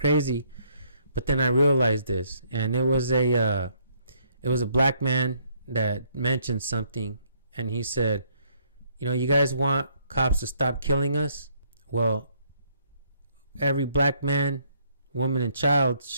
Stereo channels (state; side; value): inverted; both; correlation -0.68